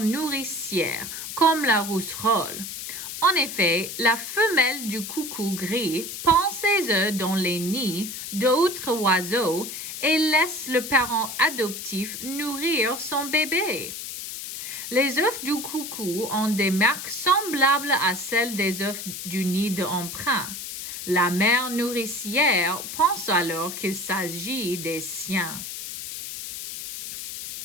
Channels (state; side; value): noise; left; hiss, 8 dB below the sound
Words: nourricière, comme la rousserolle. En effet, la femelle du coucou gris pond ses œufs dans les nids d'autres oiseaux et laisse le parent adoptif nourrir son bébé. Les œufs du coucou ont des marques semblables à celles des œufs du nid d'emprunt. La mère nourricière pense alors qu'il s'agit des siens.